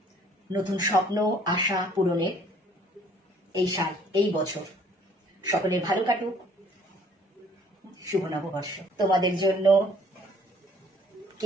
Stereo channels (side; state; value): both; normal; correlation 0.58